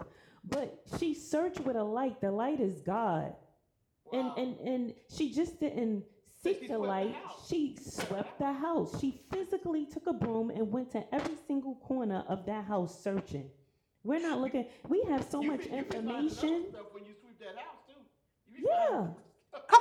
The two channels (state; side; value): identical; both; correlation 1.00